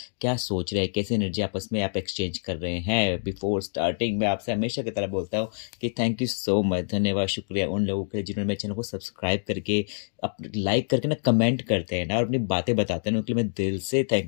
क्या सोच रहे हैं, कैसी एनर्जी आपस में आप एक्सचेंज कर रहे हैं। बिफोर स्टार्टिंग मैं आपसे हमेशा की तरह बोलता हूँ कि थैंक यू सो मच, धन्यवाद, शुक्रिया उन लोगों के लिए जिन्होंने मेरे चैनल को सब्सक्राइब करके अप लाइक करके ना कमेंट करते हैं ना और अपनी बातें बताते हैं ना, उनके लिए मैं दिल से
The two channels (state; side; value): silent; right; digital silence